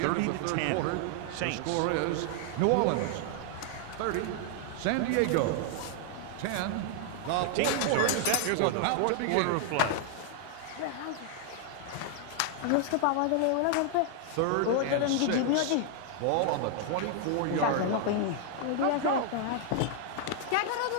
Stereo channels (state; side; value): different; both; correlation 0.00